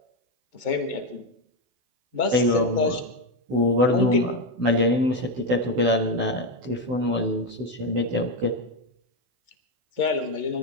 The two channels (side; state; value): left; late; 16 ms